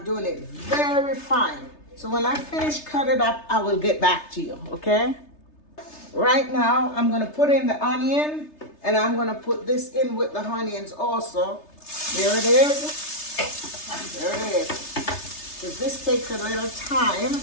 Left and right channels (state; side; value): late; right; 3.3 ms